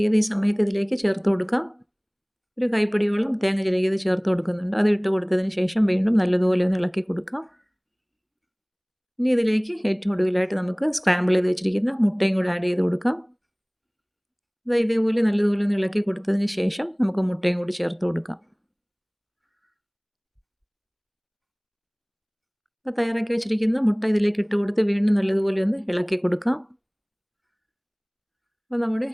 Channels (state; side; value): identical; both; correlation 1.00